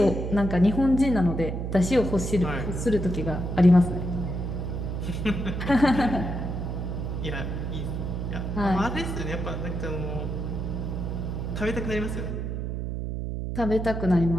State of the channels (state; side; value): noise; right; hum, 3 dB below the sound